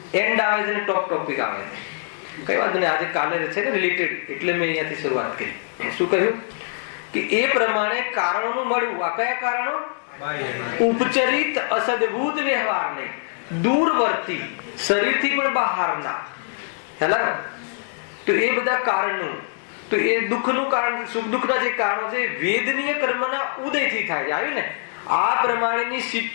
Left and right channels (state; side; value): silent; right; digital silence